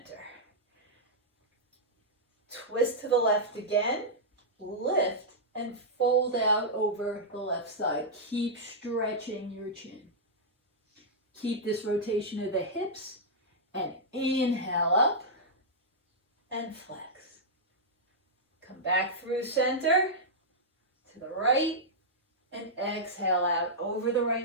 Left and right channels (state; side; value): normal; both; correlation -0.10